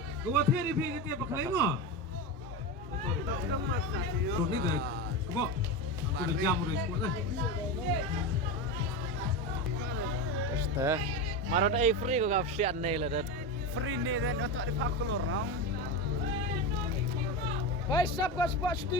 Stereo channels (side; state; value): both; normal; correlation 0.19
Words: Gua theri pi ketia pakai mo. Tuh ni deh. Kebo. Sudah jam udah ikut deh. Este. Marot ai free ko gap sian nei la dat. Free ni dan untuk di pakulur nong. Hai sab ko spot